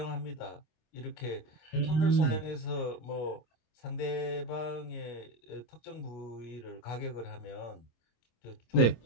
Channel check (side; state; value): right; late; 26 ms